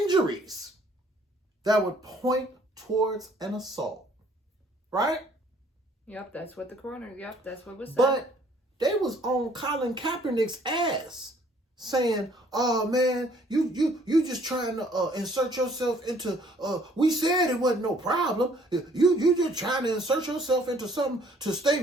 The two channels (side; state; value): both; normal; correlation 0.60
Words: that would point towards an assault. Right? Yep, that's what the coroner, that's what was said. But they was on Colin Kaepernick's ass saying, "Oh man, you just trying to insert yourself into we said it wasn't no problem. You just trying to insert yourself into something to